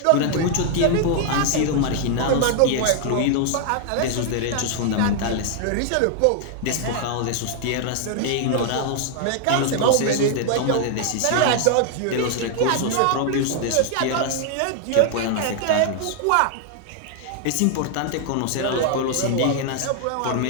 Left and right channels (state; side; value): different; both; correlation 0.00